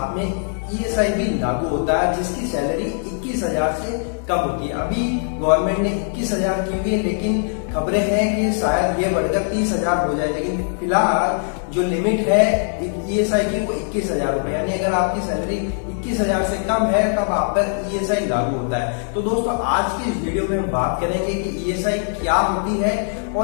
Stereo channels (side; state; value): right; silent; 65 dB below the other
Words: में ईएसआई भी लागू होता है, जिसकी सैलरी 21,000 से कम होती है। अभी गवर्नमेंट ने 21,000 की हुई है, लेकिन खबरें हैं कि शायद ये बढ़कर 30,000 हो जाए। लेकिन फिलहाल जो लिमिट है ईएसआई की वो 21,000 रुपए, यानी अगर आपकी सैलरी 21,000 से कम है तब आप पर ईएसआई लागू होता है। तो दोस्तों आज की इस वीडियो में हम बात करेंगे कि ईएसआई क्या होती है